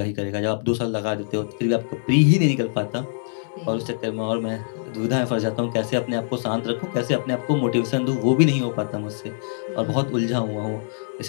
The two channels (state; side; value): silent; right; digital silence